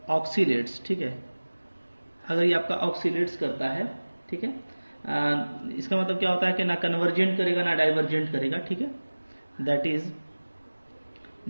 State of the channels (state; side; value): inverted; both; correlation -1.00